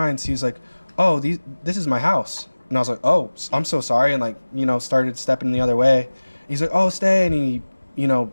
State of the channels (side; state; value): both; inverted; correlation -1.00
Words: He's like, "Oh, this is my house." And I was like, "Oh, I'm so sorry," and like, started stepping the other way. He's like, "Oh, stay," and he,